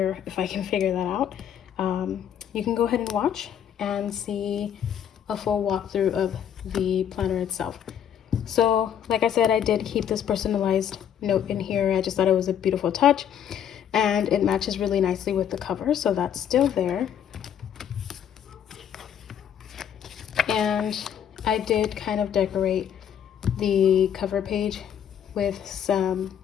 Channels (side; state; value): right; quieter; 9.1 dB